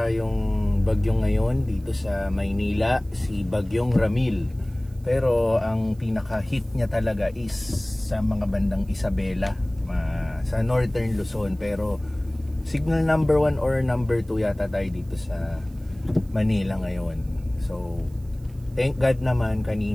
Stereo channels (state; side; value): noise; right; hiss, 30 dB below the sound